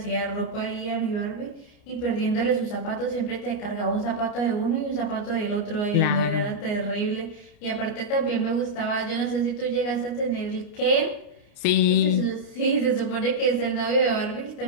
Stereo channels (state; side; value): late; right; 29 ms